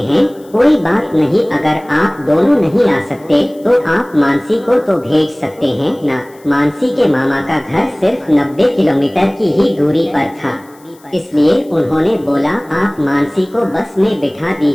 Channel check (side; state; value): left; noise; hiss, 29 dB below the sound